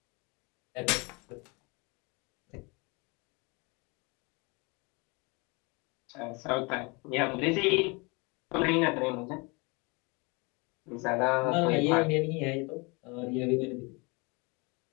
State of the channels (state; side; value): quieter; right; 28.8 dB